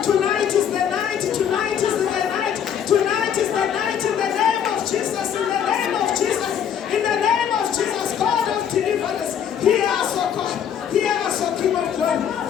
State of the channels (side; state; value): right; quieter; 8.7 dB